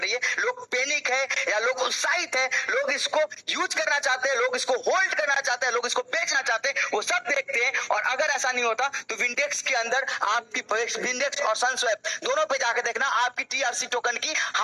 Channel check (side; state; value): both; identical; correlation 1.00